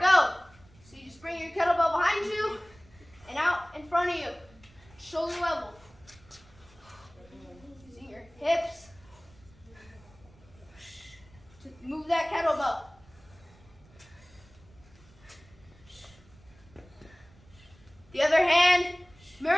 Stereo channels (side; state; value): right; noise; rumble, 26 dB below the sound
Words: So you just bring your kettlebell behind you and out in front of you, shoulder level. Using your hips to move that kettlebell. The other hand